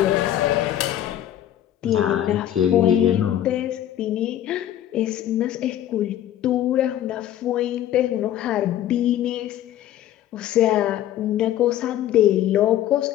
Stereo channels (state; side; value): quieter; right; 11.9 dB